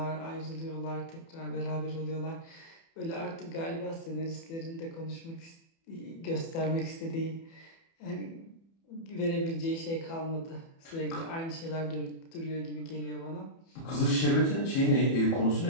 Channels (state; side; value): late; right; 30 ms